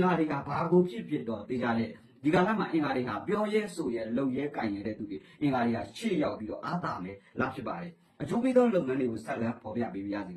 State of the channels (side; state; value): both; identical; correlation 1.00